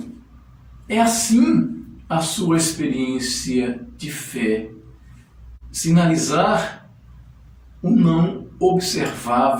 É assim a sua experiência de fé. Sinalizar o não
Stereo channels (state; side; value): identical; both; correlation 1.00